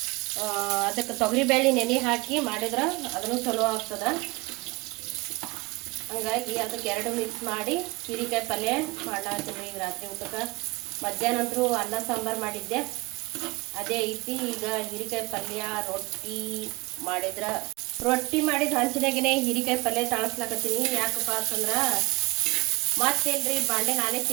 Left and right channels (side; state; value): left; quieter; 24.0 dB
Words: ಅದಕ್ಕೆ ತೊಗರಿಬೇಳೆ ನೆನೆ ಹಾಕಿ ಮಾಡಿದ್ರೆ ಅದನ್ನು ಚಲೋ ಆಗ್ತದೆ. ಹಂಗಾಗಿ ಅದಕ್ಕೆ ಎರಡು ಮಿಕ್ಸ್ ಮಾಡಿ ಹೀರೆಕಾಯಿ ಪಲ್ಯ ಮಾಡ್ಲಾತ್ತೀನಿ ಈಗ ರಾತ್ರಿ ಊಟಕ್ಕೆ. ಮಧ್ಯಾಹ್ನ ಅಂತೂ ಅನ್ನ ಸಾಂಬಾರು ಮಾಡಿದ್ದೆ, ಅದೇ ಐತಿ. ಈಗ ಹೀರೆಕಾಯಿ ಪಲ್ಯ ರೊಟ್ಟಿ ಮಾಡಿದ್ರೆ ರೊಟ್ಟಿ ಮಾಡಿದ ಹಂಚಿನಾಗೇ ಹೀರೆಕಾಯಿ ಪಲ್ಯ ತಾಳಿಸ್ಲಾಕತ್ತೀನಿ. ಯಾಕಪ್ಪ ಅಂತಂದ್ರೆ ಮತ್ತೇನ್ರಿ ಬಾಂಡೆ ನಾನೇ